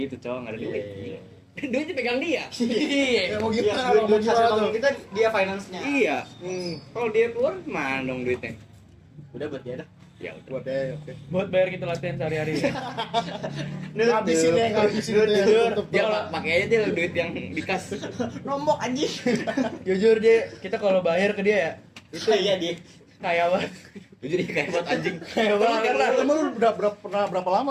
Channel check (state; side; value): identical; both; correlation 1.00